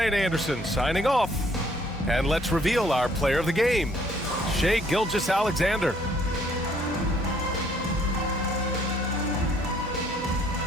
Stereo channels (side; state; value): both; normal; correlation 0.64